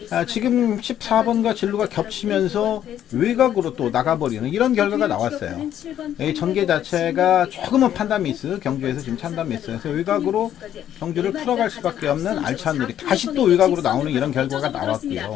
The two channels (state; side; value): quieter; right; 10.7 dB